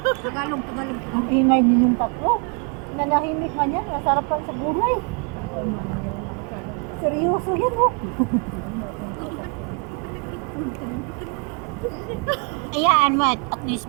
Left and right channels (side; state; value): left; quieter; 35.0 dB